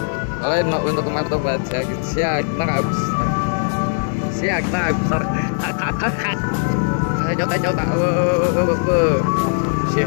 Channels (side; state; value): right; silent; digital silence